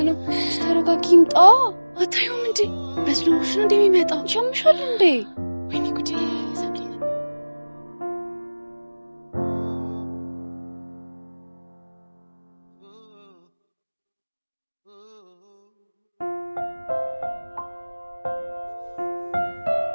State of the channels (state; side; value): inverted; both; correlation -1.00